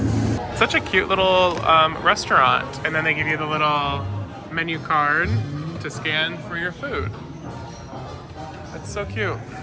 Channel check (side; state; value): both; identical; correlation 1.00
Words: Such a cute little restaurant. And then they give you the little menu card to scan for your food. That's so cute.